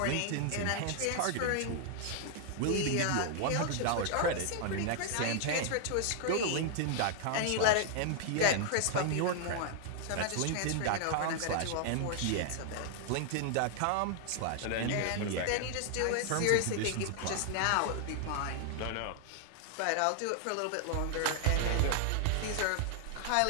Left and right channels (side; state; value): both; different; correlation 0.00